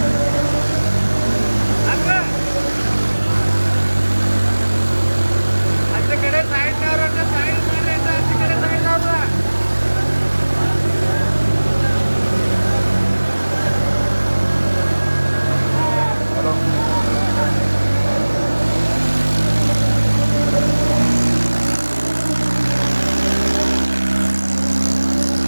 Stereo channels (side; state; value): both; inverted; correlation -1.00